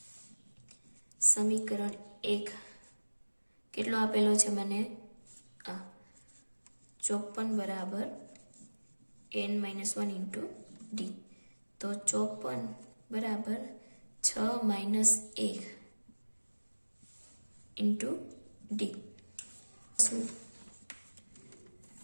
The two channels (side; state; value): both; inverted; correlation -1.00